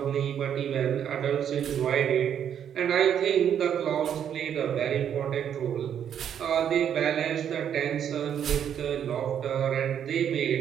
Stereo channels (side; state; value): left; quieter; 9.0 dB